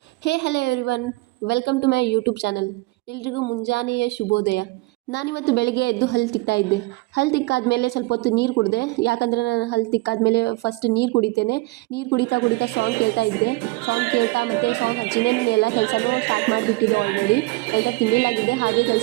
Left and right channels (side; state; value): left; quieter; 23.1 dB